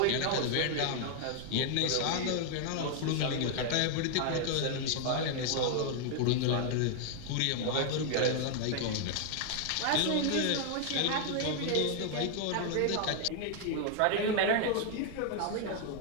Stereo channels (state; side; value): different; both; correlation 0.00